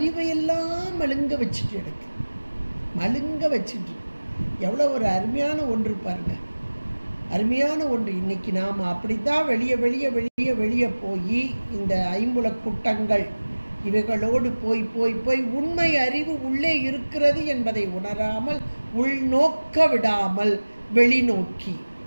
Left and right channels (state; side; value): inverted; both; correlation -1.00